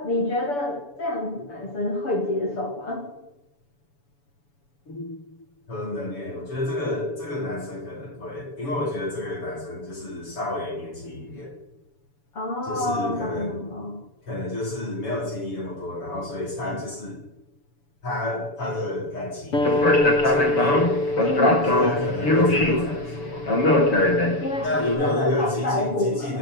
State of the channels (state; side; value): late; right; 7.0 ms